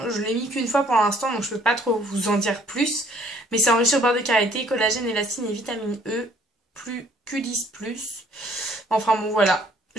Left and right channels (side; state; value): both; normal; correlation 0.61